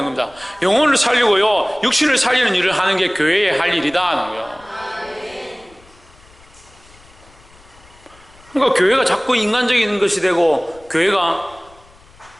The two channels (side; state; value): left; noise; rumble, 27 dB below the sound